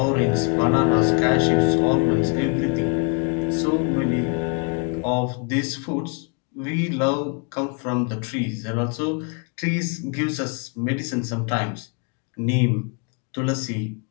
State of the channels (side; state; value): right; quieter; 35.9 dB